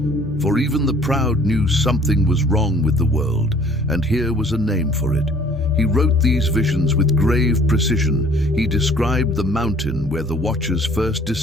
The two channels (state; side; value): normal; both; correlation 0.54